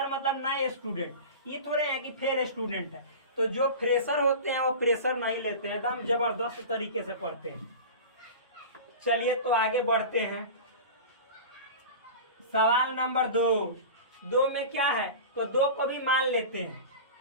मतलब नए स्टूडेंट, ये थोड़े हैं कि फेल स्टूडेंट है। तो जो फ्रेशर होते हैं वो प्रेशर नहीं लेते हैं, एकदम जबरदस्त तरीके से पढ़ते हैं। चलिए तो आगे बढ़ते हैं, सवाल नंबर 2 में क्या है, तो 2 को भी मान लेते हैं,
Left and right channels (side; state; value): both; inverted; correlation -0.32